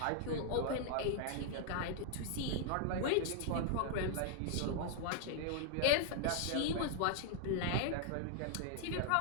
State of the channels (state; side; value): different; both; correlation 0.00